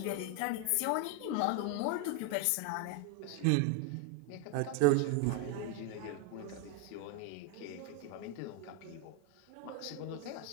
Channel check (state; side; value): different; both; correlation 0.01